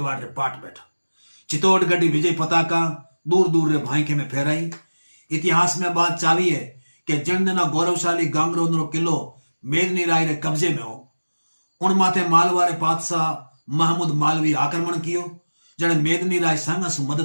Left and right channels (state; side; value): inverted; both; correlation -1.00